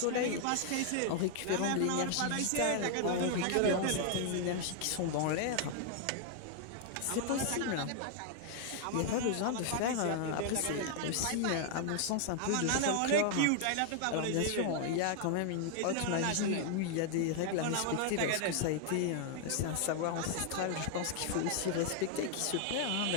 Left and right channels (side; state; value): both; different; correlation 0.00